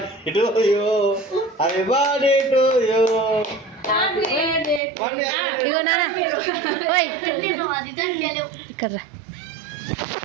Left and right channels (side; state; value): left; drops out; at 4.8 s